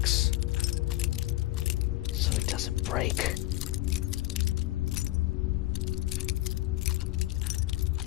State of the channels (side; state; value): right; quieter; 17.5 dB